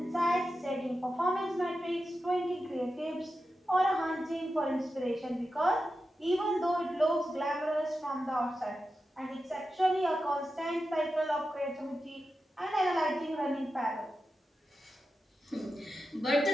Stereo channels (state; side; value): normal; both; correlation 0.91